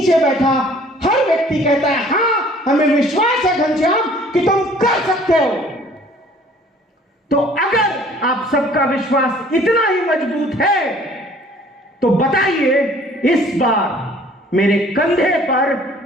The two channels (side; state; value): both; normal; correlation 0.54